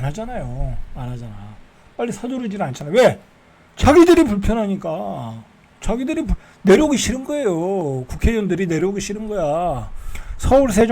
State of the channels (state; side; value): identical; both; correlation 1.00